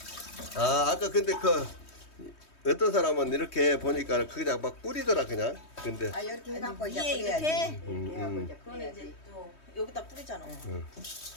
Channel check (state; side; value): late; right; 3.2 ms